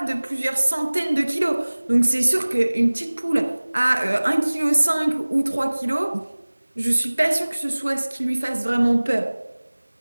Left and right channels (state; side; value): inverted; both; correlation -1.00